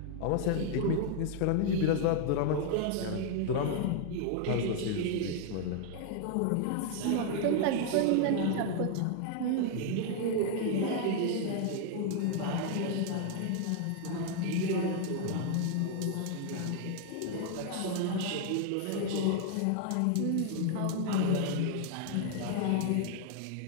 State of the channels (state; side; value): different; both; correlation 0.00